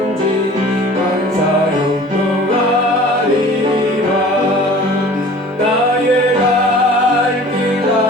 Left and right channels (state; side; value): normal; both; correlation 0.45